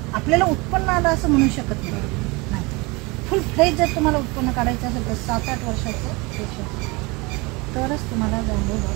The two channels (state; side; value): quieter; left; 25.8 dB